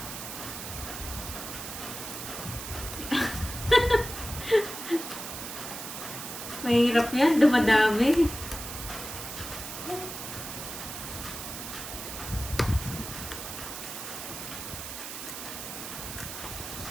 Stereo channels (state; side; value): noise; right; hiss, 8 dB below the sound